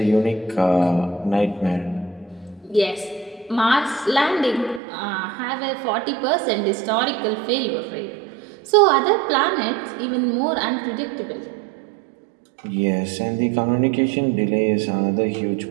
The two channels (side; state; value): left; drops out; at 4.8 s